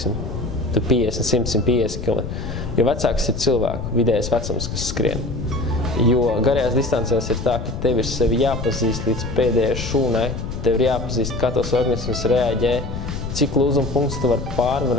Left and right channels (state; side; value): noise; left; rumble, 6 dB below the sound